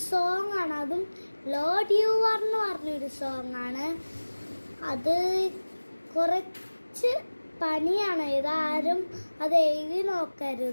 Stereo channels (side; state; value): both; inverted; correlation -1.00